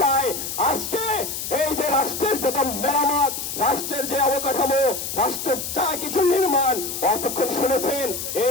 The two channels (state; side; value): noise; left; hiss, 5 dB below the sound